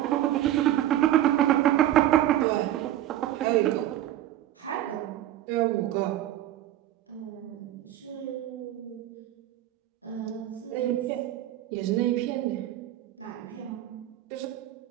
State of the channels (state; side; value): quieter; left; 13.1 dB